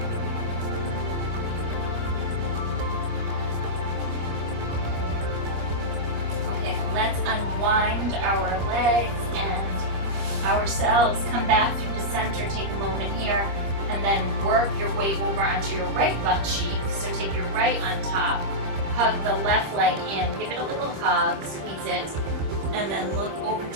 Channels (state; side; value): late; left; 25 ms